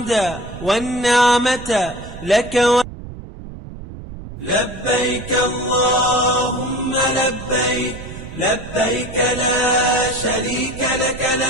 والنعمة لك لبيك اللهم لبيك لبيك لا شريك لك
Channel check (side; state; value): right; noise; rumble, 13 dB below the sound